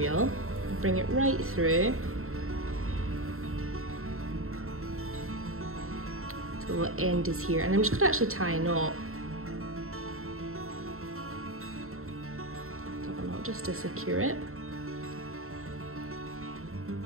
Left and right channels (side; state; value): left; late; 0.62 ms